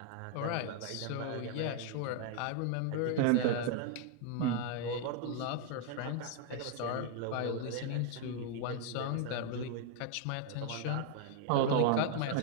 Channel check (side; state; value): both; different; correlation 0.00